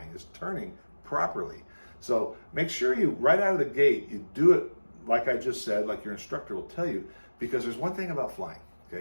is turning properly. So make sure you, right out of the gate, you do it like I just said, like your instructor will tell you, because there's one thing about flying,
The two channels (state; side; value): inverted; both; correlation -1.00